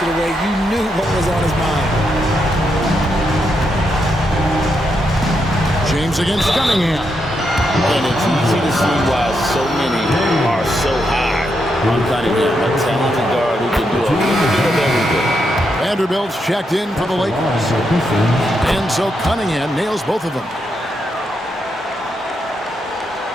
it away, you knew what was on his mind. James against Cunningham. And it's easy to see why so many are so high on Cunningham. A talented guard who can do a little bit of everything. Vanderbilt's checked in for the Lakers. And so Cunningham nails both of them.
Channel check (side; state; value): both; normal; correlation 0.81